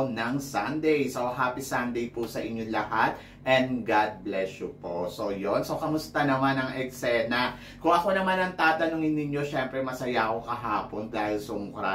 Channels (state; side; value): identical; both; correlation 1.00